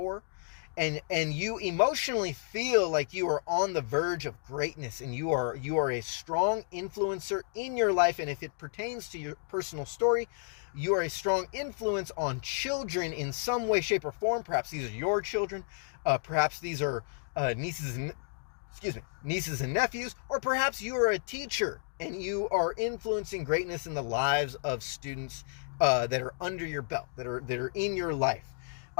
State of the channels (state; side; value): silent; right; digital silence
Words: And you emotionally feel like you are on the verge of greatness, and you are a strong influencer in your life. And if it pertains to your personal story, you are a strong influence on children in some way, shape, or form. Perhaps these are your children. Perhaps these are nieces and nephews, or perhaps you are a teacher and you are influencing greatness in the lives of students that are under your belt, that are in your life.